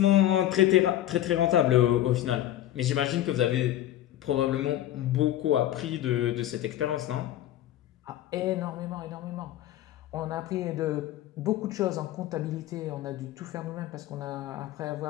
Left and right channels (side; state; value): right; quieter; 13.0 dB